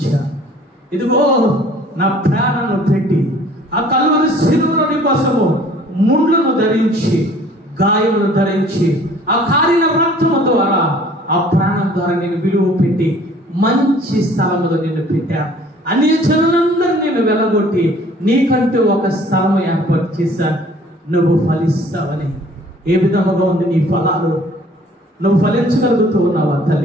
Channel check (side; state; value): both; normal; correlation 0.53